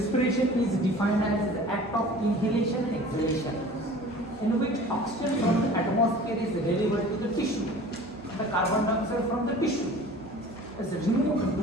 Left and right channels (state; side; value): normal; both; correlation 0.43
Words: is defined as the act of inhalation and exhalation in which oxygen from the atmosphere is delivered to the tissue and the carbon dioxide from the tissue is removed